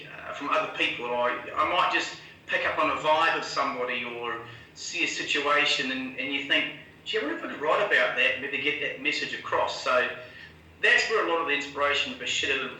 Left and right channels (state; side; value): identical; both; correlation 1.00